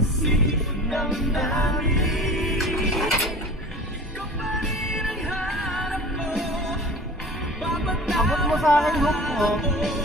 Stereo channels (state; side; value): normal; both; correlation 0.40